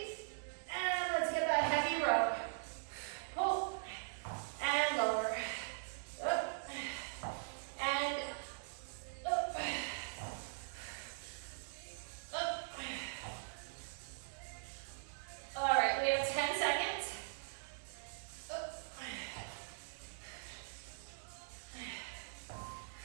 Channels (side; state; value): left; silent; digital silence